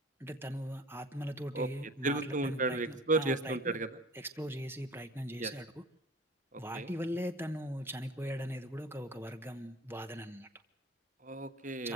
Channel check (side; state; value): both; normal; correlation 0.42